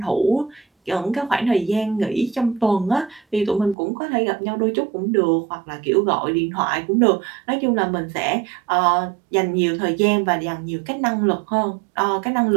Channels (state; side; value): drops out; left; at 3.8 s